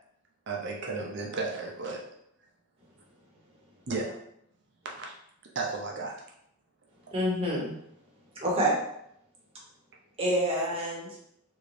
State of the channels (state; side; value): normal; both; correlation 0.14